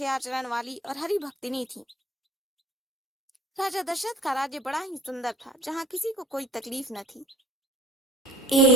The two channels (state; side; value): normal; both; correlation 0.48